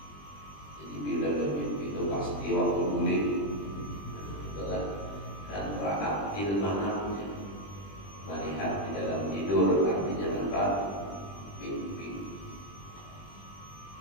Jadi bila bermimpi itu pasti waktu guling, dan ra'at fil manamnya, melihat di dalam tidur, artinya apa? Mimpi.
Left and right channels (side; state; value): right; late; 20 ms